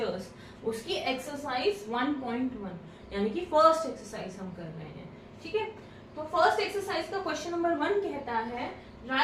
उसकी एक्सरसाइज 1.1 यानी कि फर्स्ट एक्सरसाइज हम कर रहे हैं। ठीक है, तो फर्स्ट एक्सरसाइज का क्वेश्चन नंबर 1 कहता है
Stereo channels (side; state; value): both; identical; correlation 1.00